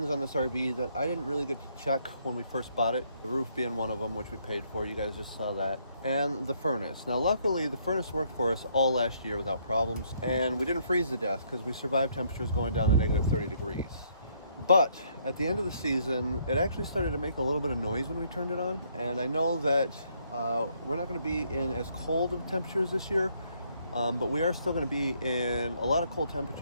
on this RV that I didn't really get to check when we first bought it. The roof being one of them, which we paid for. You guys just saw that. And the furnace. Now, luckily, the furnace worked for us all last year without problems. And we didn't freeze to death because we survived temperatures going down to negative 30 degrees. But at the end of the season, it actually started to make a little bit of noise when we turned it on. And I know that we're not going to be in as cold of temperatures this year. But we are still going to be in a lot of cold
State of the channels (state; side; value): inverted; both; correlation -0.69